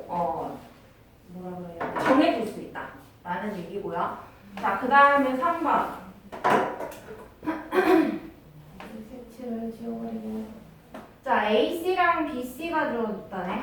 뭐라 그래야 돼? 정해질 수 있다 라는 얘기고요. 자, 그 다음에 3번 색칠을 지워버리고 자, AC랑 BC가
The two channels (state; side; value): identical; both; correlation 1.00